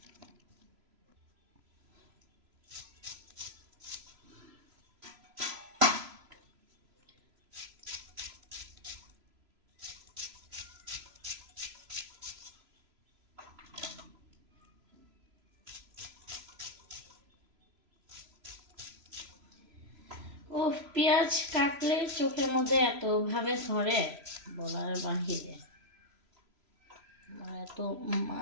ও পেঁয়াজ কাটলে চোখের মধ্যে এতভাবে ধরে বলার বাহিরে, এত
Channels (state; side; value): late; left; 3.0 ms